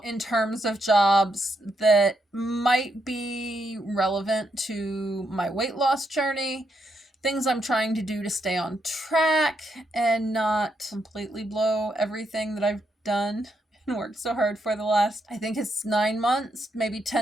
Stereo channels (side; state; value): both; normal; correlation 0.80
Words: in terms of jobs that might be relevant to my weight loss journey. Things I'm trying to do to stay on track and not completely blow everything that I've done and worked so hard for the last, I think it's 9 months, maybe